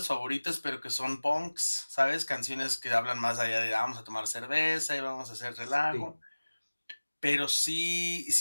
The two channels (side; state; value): both; inverted; correlation -1.00